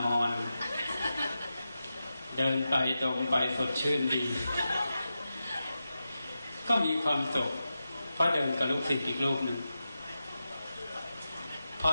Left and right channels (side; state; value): both; inverted; correlation -0.91